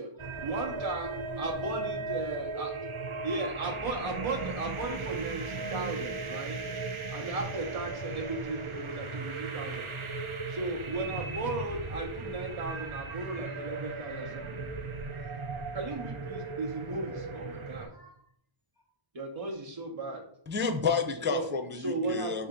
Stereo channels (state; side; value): late; left; 1.4 ms